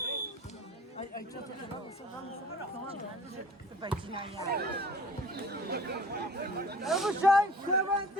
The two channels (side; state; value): both; normal; correlation 0.46